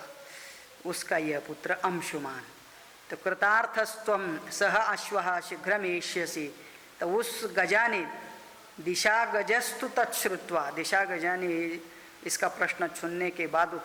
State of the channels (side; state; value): both; identical; correlation 1.00